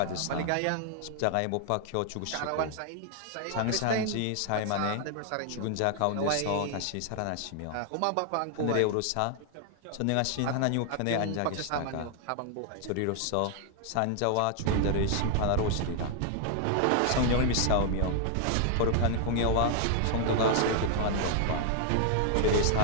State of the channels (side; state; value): both; different; correlation 0.00